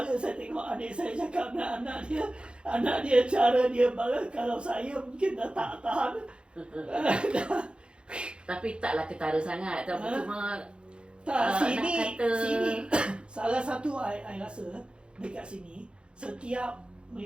saya tengok adik saya cakap dengan anak dia cara dia balas. Kalau saya mungkin dah tak tahan. Tapi taklah ketara sangat. Tapi cuma sini salah satu I rasa dekat sini setiap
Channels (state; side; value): late; left; 0.055 ms